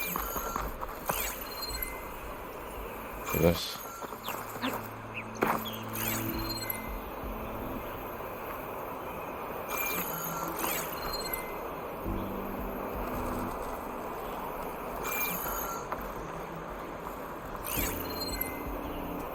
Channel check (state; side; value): identical; both; correlation 1.00